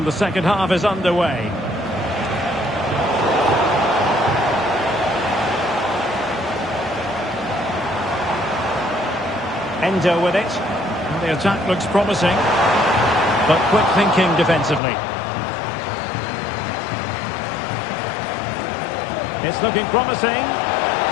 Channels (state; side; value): drops out; right; at 14.8 s